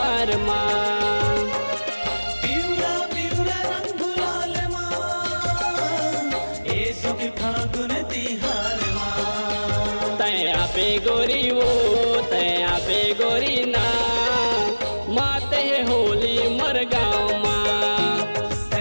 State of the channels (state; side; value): inverted; both; correlation -1.00